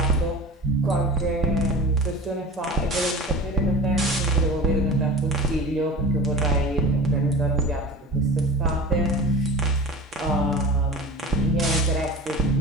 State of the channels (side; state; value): both; normal; correlation 0.35